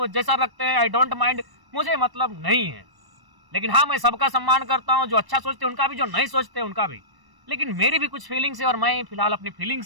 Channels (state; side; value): late; left; 1.0 ms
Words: जैसा रखते हैं, आई डोंट माइंड, मुझे मतलब नहीं है। लेकिन हाँ, मैं सबका सम्मान करता हूँ, जो अच्छा सोचते हैं उनका भी, जो नहीं सोचते उनका भी। लेकिन मेरी भी कुछ फीलिंग्स है, और मैं फिलहाल अपनी